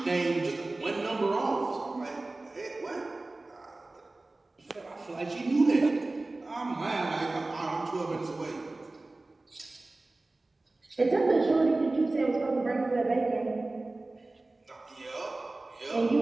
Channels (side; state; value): left; quieter; 3.1 dB